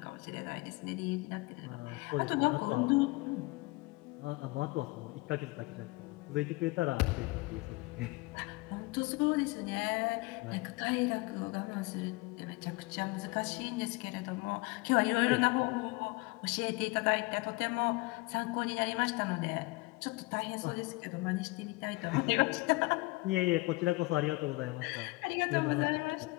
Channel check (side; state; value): right; quieter; 23.8 dB